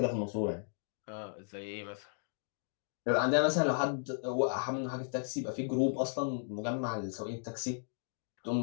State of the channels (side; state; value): right; silent; digital silence